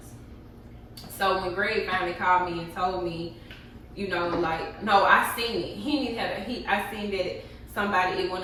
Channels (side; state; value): both; identical; correlation 1.00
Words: So when Greg finally called me and told me, you know, like, no, I seen it. I seen that somebody, it went